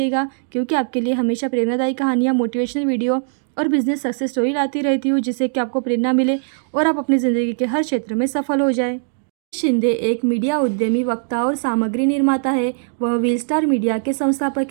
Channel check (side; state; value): left; silent; digital silence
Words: क्योंकि आपके लिए हमेशा प्रेरणादायी कहानियाँ, मोटिवेशनल वीडियो और बिजनेस सक्सेस स्टोरी लाती रहती हूँ, जिससे कि आपको प्रेरणा मिले और आप अपनी ज़िंदगी के हर क्षेत्र में सफल हो जाए। शिंदे एक मीडिया उद्यमी, वक्ता और सामग्री निर्माता है। वह व्हील स्टार मीडिया के